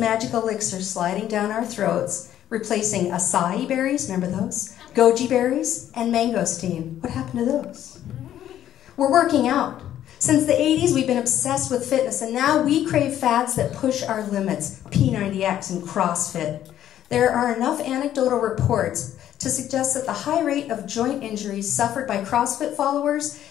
elixir sliding down our throats, replacing acai berries, remember those? Goji berries, and mangosteen. What happened to those? We're working out. Since the 80s, we've been obsessed with fitness, and now we crave fads that push our limits, P90X and CrossFit. There are enough anecdotal reports to suggest that the high rate of joint injuries suffered by CrossFit followers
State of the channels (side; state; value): right; quieter; 11.4 dB